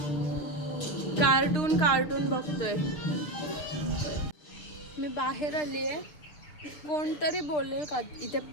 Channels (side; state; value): right; late; 6.6 ms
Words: कार्टून कार्टून बघतोय. मी बाहेर आली आहे. कोणतरी बोलेल का इथे